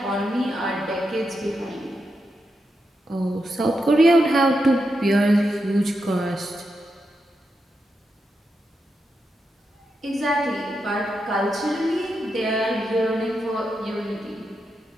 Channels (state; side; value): normal; both; correlation 0.86